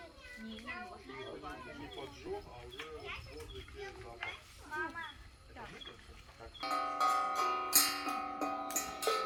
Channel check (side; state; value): both; identical; correlation 1.00